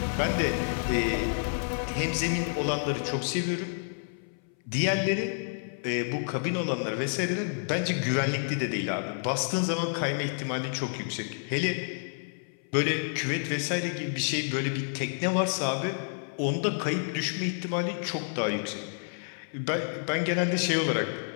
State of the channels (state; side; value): silent; right; 58 dB below the other